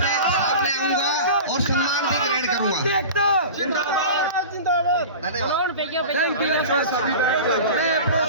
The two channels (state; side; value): inverted; both; correlation -0.34